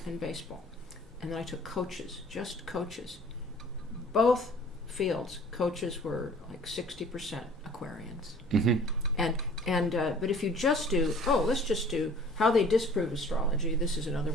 and baseball. And then I took coaches, just coaches. Both fields, coaches were like 60% Aquarians. But if you just do, let's just do how they disprove astrology. This is another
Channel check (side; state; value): both; normal; correlation 0.50